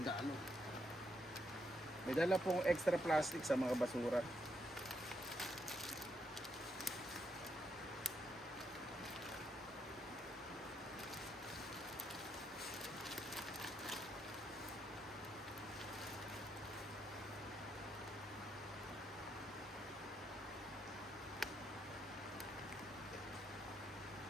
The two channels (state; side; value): normal; both; correlation 0.78